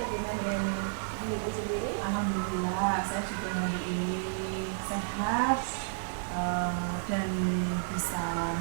dengan Ibu Putri sendiri? Alhamdulillah, saya juga hari ini sehat, dan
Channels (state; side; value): silent; left; 57 dB below the other